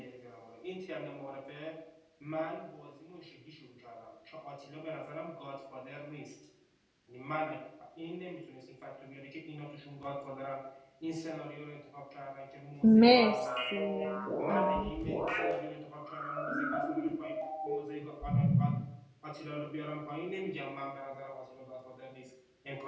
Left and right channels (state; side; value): identical; both; correlation 1.00